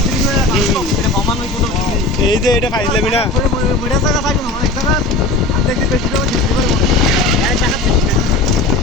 এই যে এটা ফাইজলামি না।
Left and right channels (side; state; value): right; quieter; 3.0 dB